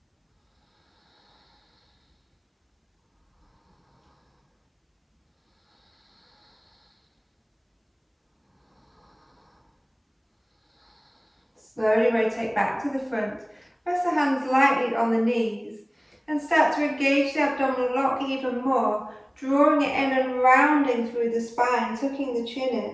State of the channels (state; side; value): identical; both; correlation 1.00